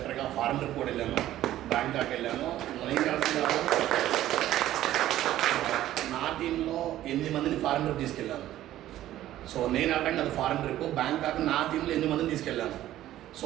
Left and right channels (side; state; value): left; quieter; 13.6 dB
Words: ఫారెన్ ట్రిప్ కూడా వెళ్ళాను, బ్యాంకాక్ వెళ్ళాను. నా టీంలో 8 మందిని ఫారెన్ ట్రిప్ తీసుకెళ్ళాను. సో నేను అటెండ్ అది ఫారెన్ ట్రిప్ బ్యాంకాక్, నా టీంలో 8 మందిని తీసుకెళ్ళాను. సో